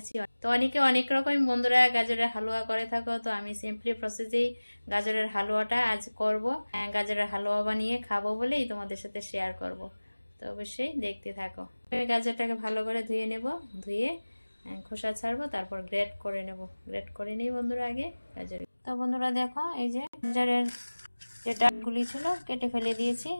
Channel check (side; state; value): both; inverted; correlation -1.00